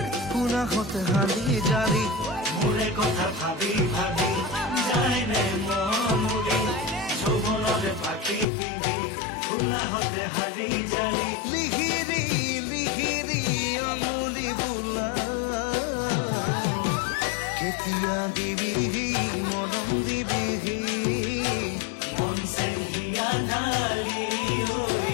পুনাহতে হালি জালি মোৰে কথা ভাবি ভাবি যায় নে মৰুৰি যৌৱনৰ পাখি পিন্ধি পুনাহতে হালি জালি লিহিৰি লিহিৰি আঙুলি বোলা কেতিয়া দিবিহি মৰম দিবিহি মন চেং হিয়া ঢালি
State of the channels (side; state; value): right; drops out; at 8.5 s